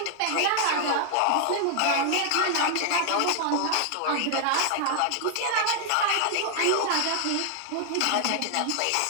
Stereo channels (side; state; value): both; different; correlation 0.00